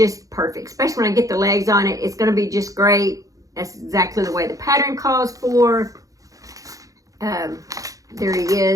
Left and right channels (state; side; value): late; left; 0.17 ms